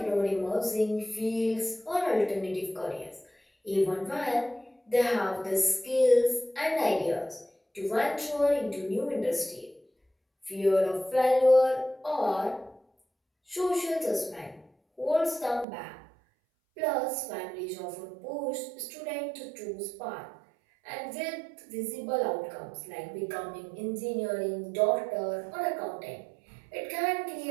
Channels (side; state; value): left; drops out; at 15.7 s